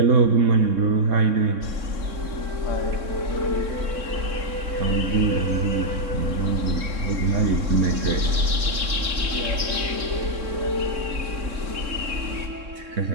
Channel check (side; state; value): left; late; 3.6 ms